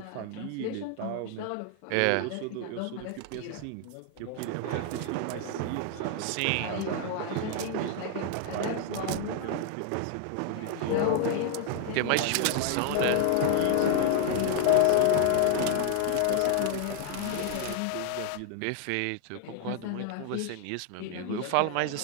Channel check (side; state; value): both; different; correlation 0.00